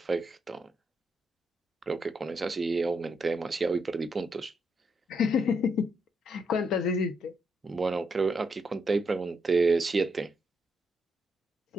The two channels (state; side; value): normal; both; correlation 0.79